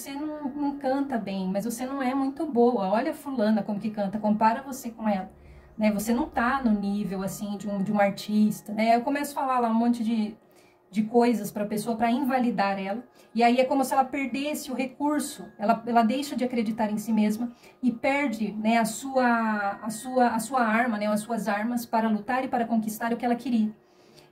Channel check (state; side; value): identical; both; correlation 1.00